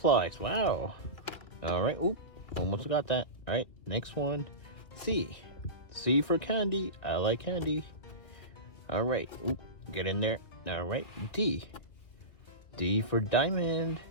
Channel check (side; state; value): right; late; 2.2 ms